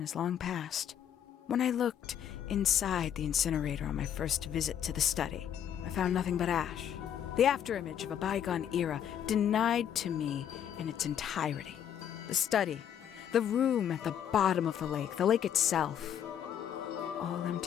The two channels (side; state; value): right; quieter; 9.4 dB